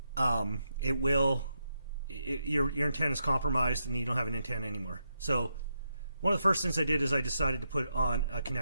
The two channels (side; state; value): both; inverted; correlation -0.82